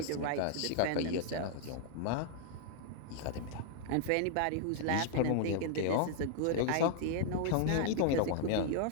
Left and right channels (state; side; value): different; both; correlation 0.00